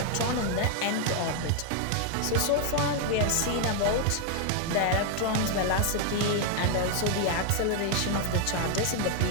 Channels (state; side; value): different; both; correlation 0.00